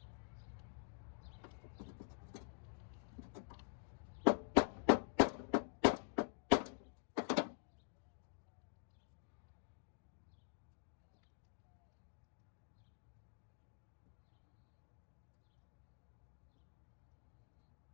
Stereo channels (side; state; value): right; silent; digital silence